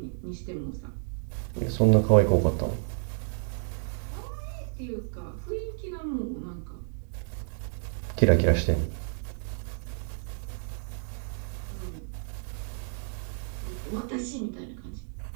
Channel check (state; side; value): silent; left; 57 dB below the other